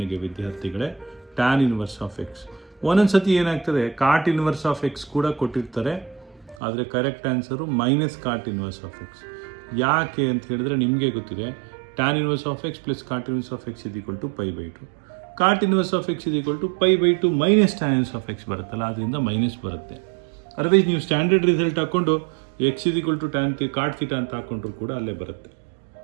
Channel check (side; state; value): left; drops out; at 6.6 s